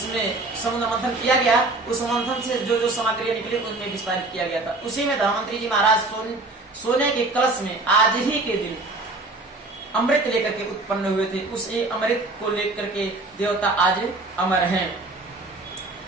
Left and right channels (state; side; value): quieter; left; 3.1 dB